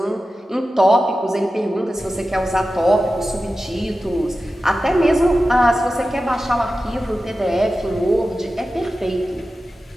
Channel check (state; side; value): normal; both; correlation 0.94